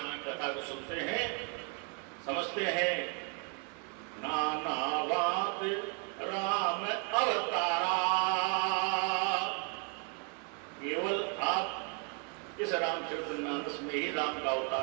कथा को सुनते हैं, समझते हैं। नाना बात राम अवतारा, केवल आप इस रामचरितमानस में ही राम का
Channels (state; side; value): quieter; left; 35.8 dB